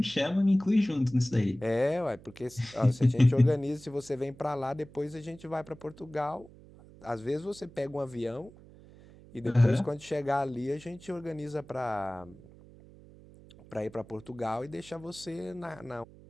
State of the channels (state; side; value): noise; right; hum, 21 dB below the sound